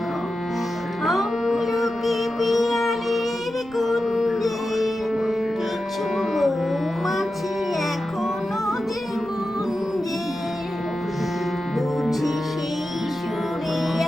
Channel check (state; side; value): noise; right; rumble, 23 dB below the sound